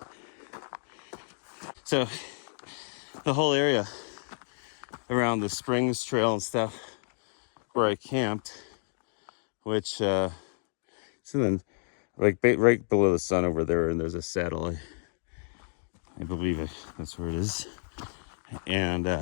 So the whole area around the Springs Trail and stuff where I camped, which it's in the, like right below the sun over there, and there's a saddle. I believe that's where it is. And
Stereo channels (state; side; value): silent; right; digital silence